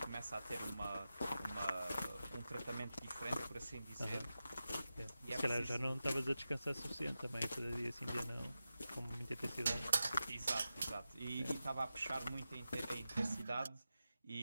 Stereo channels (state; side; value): inverted; both; correlation -0.92